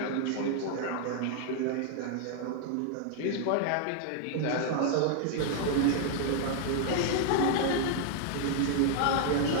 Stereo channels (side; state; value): both; different; correlation 0.00